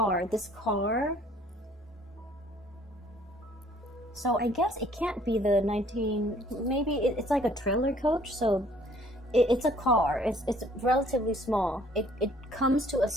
so I guess it can't be the maybe it's like a trailer coach, so it's a car, it's relatively small. It comes to a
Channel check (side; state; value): both; normal; correlation 0.58